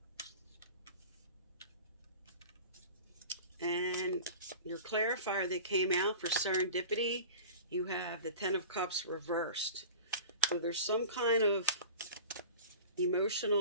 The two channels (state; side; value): inverted; both; correlation -0.38